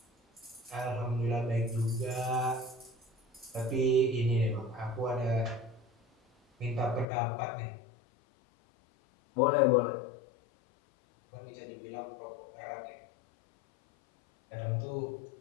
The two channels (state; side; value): drops out; right; at 7.1 s